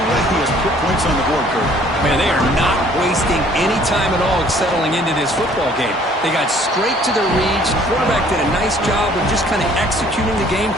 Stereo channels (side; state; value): both; normal; correlation 0.58